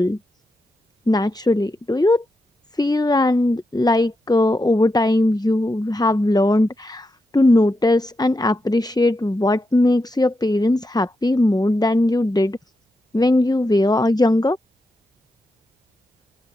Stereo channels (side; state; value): both; normal; correlation 0.86